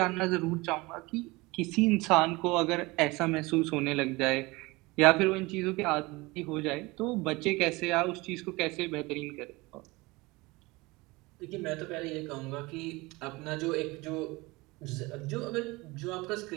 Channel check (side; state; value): left; quieter; 22.9 dB